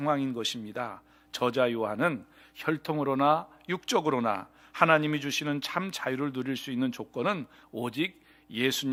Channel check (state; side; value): identical; both; correlation 1.00